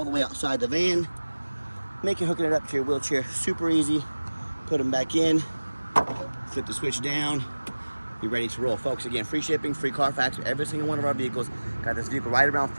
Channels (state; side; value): inverted; both; correlation -1.00